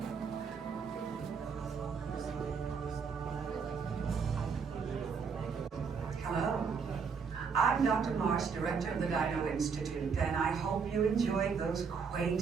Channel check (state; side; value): quieter; left; 5.8 dB